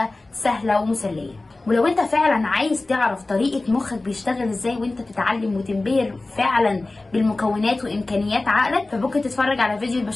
سهلة ومسلية. ولو انت فعلا عايز تعرف طريقة مخك بيشتغل ازاي وانت بتتعلم وتنبهر فعلا بالمكونات وامكانيات عقلك، فممكن تتفرج على فيديو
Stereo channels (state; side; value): quieter; right; 3.1 dB